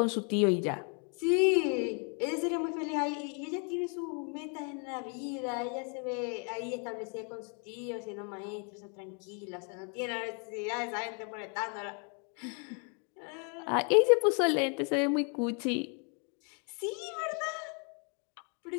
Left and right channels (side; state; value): right; quieter; 38.6 dB